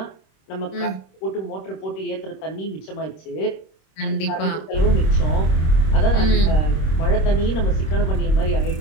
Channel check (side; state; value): right; late; 26 ms